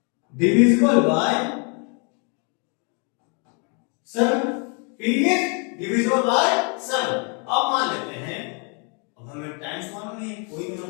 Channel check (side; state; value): right; quieter; 36.7 dB